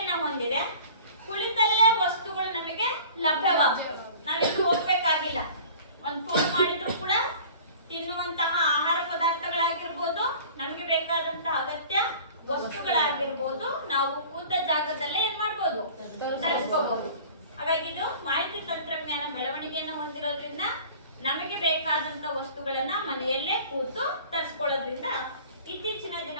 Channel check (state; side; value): inverted; both; correlation -0.45